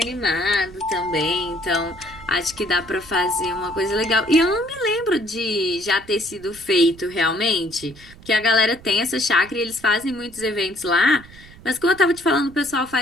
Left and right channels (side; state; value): right; noise; rumble, 21 dB below the sound